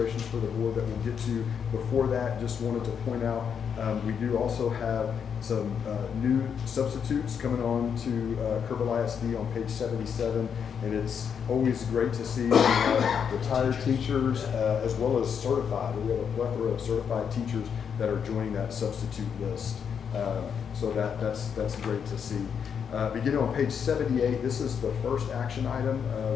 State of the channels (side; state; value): right; quieter; 7.3 dB